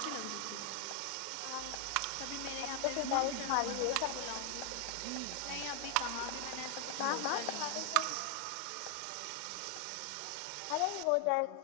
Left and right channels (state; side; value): different; both; correlation 0.01